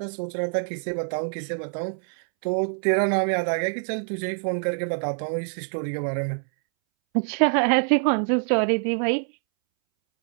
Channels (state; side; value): silent; left; 62 dB below the other